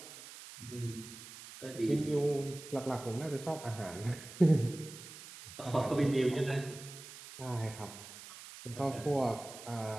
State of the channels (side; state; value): right; noise; hiss, 14 dB below the sound